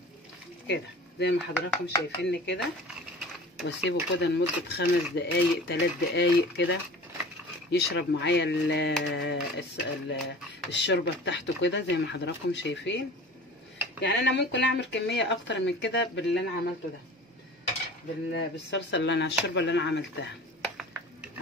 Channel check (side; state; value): both; normal; correlation 0.40